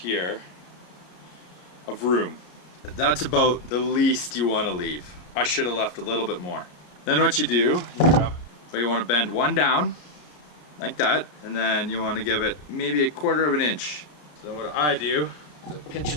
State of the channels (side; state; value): right; late; 33 ms